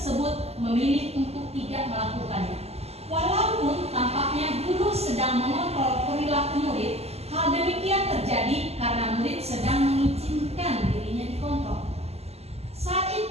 memilih untuk tidak melakukannya. Walaupun tampaknya guru sedang mengontrol perilaku murid, hal demikian terjadi karena murid sedang mengizinkan dirinya dikontrol. Saat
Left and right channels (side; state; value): left; late; 0.30 ms